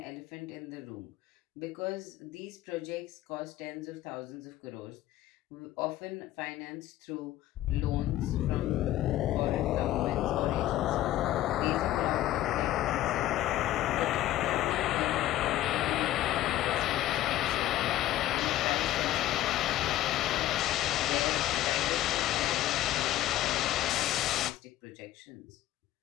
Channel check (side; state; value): right; quieter; 14.1 dB